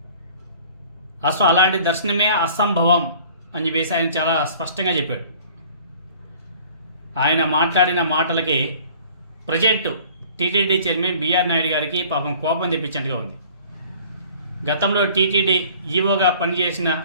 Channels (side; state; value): both; inverted; correlation -0.50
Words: అసలు అలాంటి దర్శనమే అసంభవం అని చెప్పేసి ఆయన చాలా స్పష్టంగా చెప్పాడు. ఆయన మాట్లాడిన మాటలకి present TTD chairman BR Naidu గారికి పాపం కోపం తెప్పించినట్టుగా ఉంది. గతంలో టీటీడీ ఈవోగా పనిచేసిన